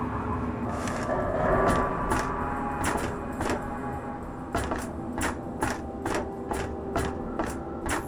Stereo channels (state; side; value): identical; both; correlation 1.00